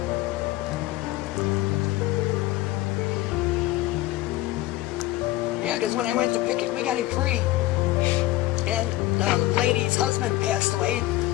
Yeah, because when I went to pick it, we got him free. And the lady's husband passed away,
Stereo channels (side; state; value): right; quieter; 16.9 dB